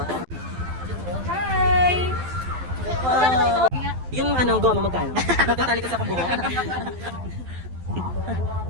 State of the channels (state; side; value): late; left; 12 ms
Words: Hi! Wow! Yung ano, goma magkano? Magtatali kasi akong buhok.